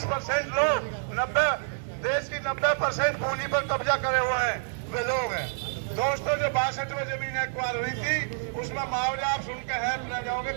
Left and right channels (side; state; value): left; silent; digital silence